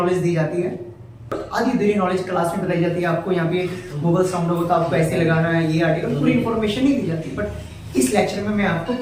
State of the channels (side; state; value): both; identical; correlation 1.00